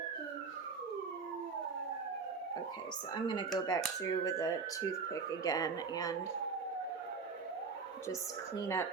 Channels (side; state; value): left; quieter; 5.0 dB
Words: Okay, so I'm going to go back through with a toothpick again and just clean